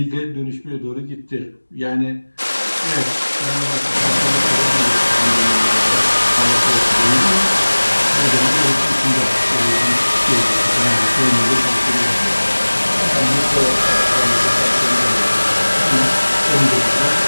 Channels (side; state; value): both; inverted; correlation -1.00